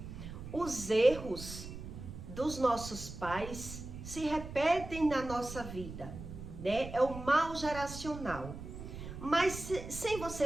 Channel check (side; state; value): right; noise; rumble, 10 dB below the sound